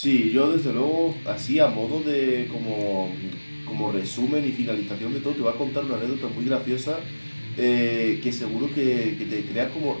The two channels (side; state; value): both; inverted; correlation -1.00